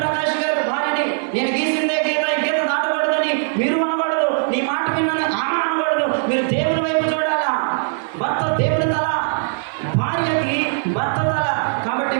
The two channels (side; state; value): left; silent; 60 dB below the other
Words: గారు భార్యని నేను గీసిందే గీత, ఈ గీత దాటకూడదని మీరు అనకూడదు. నీ మాట విన్నాను ఆమె అనకూడదు. మీరు దేవుని వైపు చూడాలా. భర్త దేవుని తల, భార్యకి భర్త తల. కాబట్టి